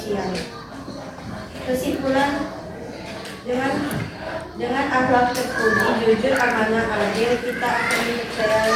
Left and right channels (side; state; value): both; identical; correlation 1.00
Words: Kesimpulan, dengan akhlak terpuji, jujur, amanah, adil, kita akan dipercaya